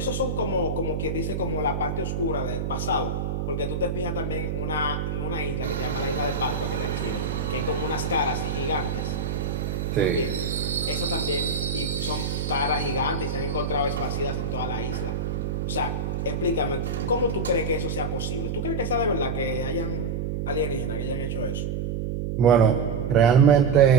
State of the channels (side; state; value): right; noise; hum, 2 dB below the sound